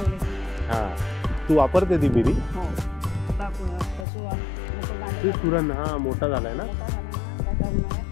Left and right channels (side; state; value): right; drops out; at 4.0 s